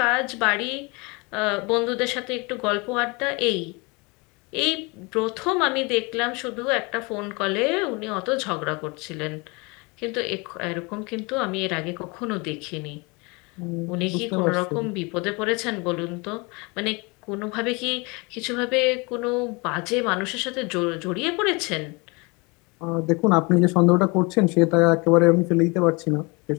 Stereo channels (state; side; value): quieter; right; 28.0 dB